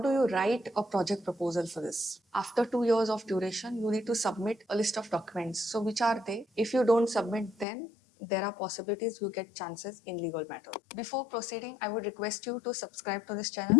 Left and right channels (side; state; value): right; drops out; at 7.7 s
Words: you write a project proposal for this. After 2 years of duration, you need to submit a list of documents. So which are they? If you don't submit, then there are possibilities you get chances in legal matter. Before proceeding, I would request you to subscribe to this channel